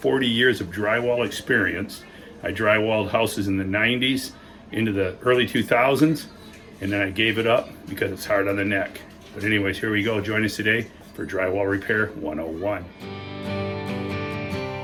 years of drywall experience. I drywalled houses in the 90s into the early 2000s, and then I gave it up because it's hard on the neck. But anyways, here we go. Join us today for Drywall Repair 101.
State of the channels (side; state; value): both; identical; correlation 1.00